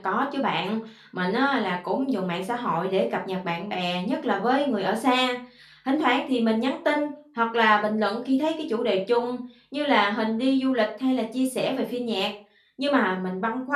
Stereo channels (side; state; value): both; identical; correlation 1.00